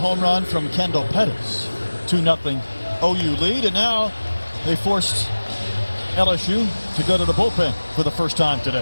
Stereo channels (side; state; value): both; inverted; correlation -1.00